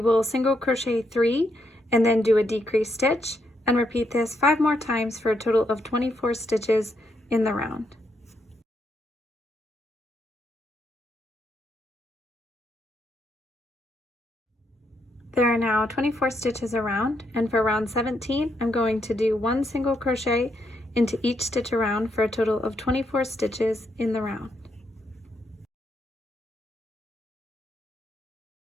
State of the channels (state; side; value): normal; both; correlation 0.78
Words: will single crochet 3 and then do a decrease stitch and repeat this 5 more times for a total of 24 stitches in the round. There are now 24 stitches around, and for round 17, I'm going to do 1 single crochet into each stitch around for a total of 24 stitches in the round.